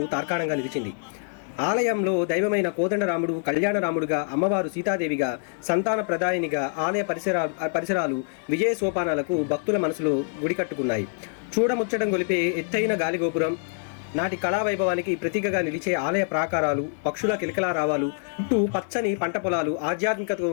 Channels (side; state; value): right; silent; 61 dB below the other